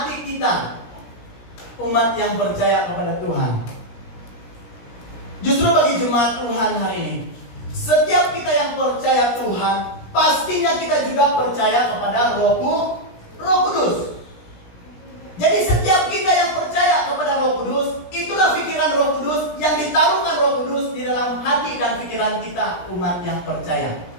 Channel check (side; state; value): right; late; 17 ms